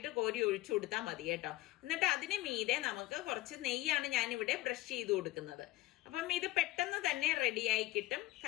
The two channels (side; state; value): right; quieter; 17.7 dB